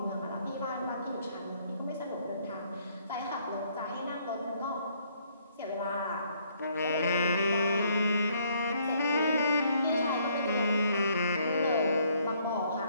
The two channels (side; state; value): both; inverted; correlation -0.67